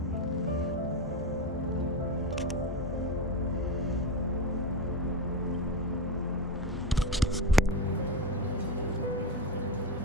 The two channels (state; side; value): normal; both; correlation 0.15